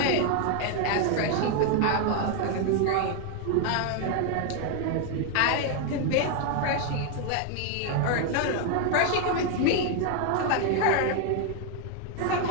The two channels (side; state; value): both; different; correlation 0.01